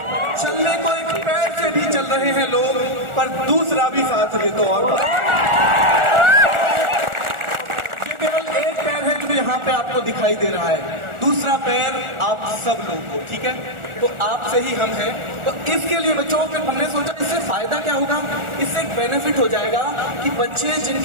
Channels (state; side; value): late; left; 1.4 ms